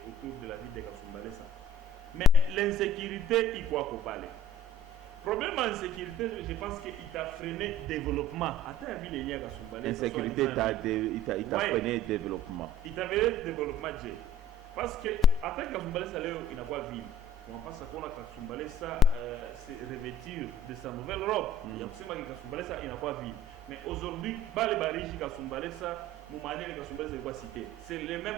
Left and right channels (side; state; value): both; normal; correlation 0.48